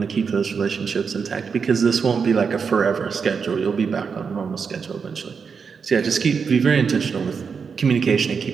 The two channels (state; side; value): quieter; left; 5.9 dB